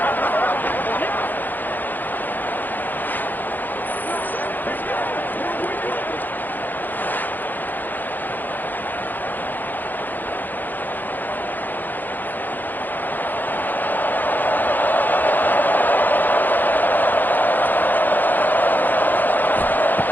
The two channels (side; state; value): right; late; 0.086 ms